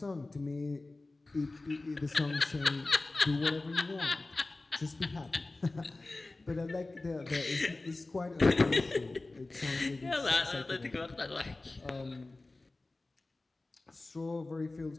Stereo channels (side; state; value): right; quieter; 3.1 dB